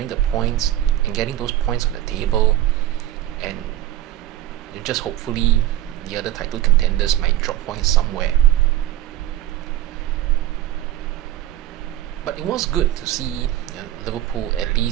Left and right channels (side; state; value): left; quieter; 13.6 dB